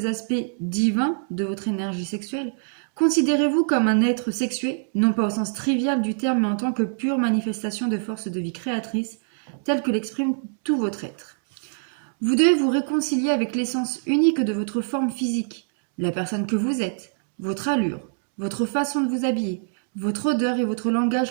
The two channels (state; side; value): silent; left; digital silence